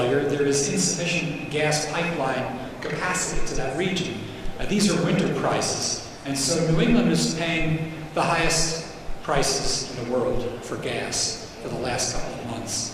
there is insufficient gas pipeline capacity to that region. These are winter prices. And so New England is paying the highest prices in the world for gas for the last couple of months,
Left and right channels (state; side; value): identical; both; correlation 1.00